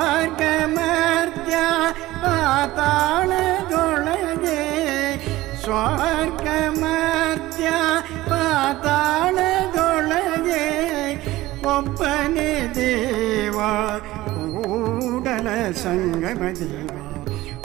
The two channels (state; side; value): quieter; left; 17.4 dB